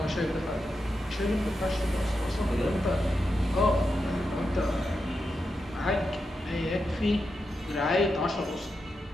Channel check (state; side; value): normal; both; correlation 0.87